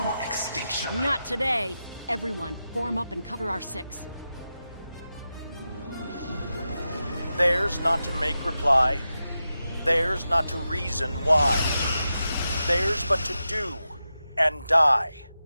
extinction. Not today. Everyone, form up and cover our six. Theirs not to make reply. Theirs not to reason why. Theirs but to do and die.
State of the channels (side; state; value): both; inverted; correlation -0.91